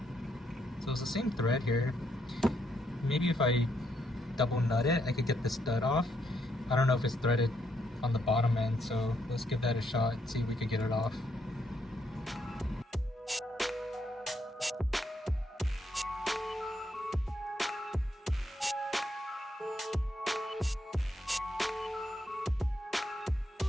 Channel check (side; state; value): both; normal; correlation 0.75